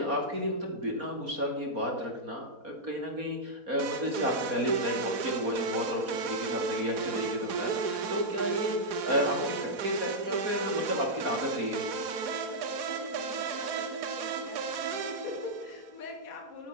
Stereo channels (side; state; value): left; late; 4.7 ms